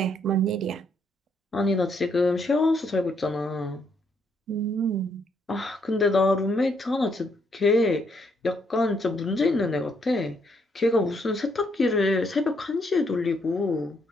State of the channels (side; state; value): both; normal; correlation 0.73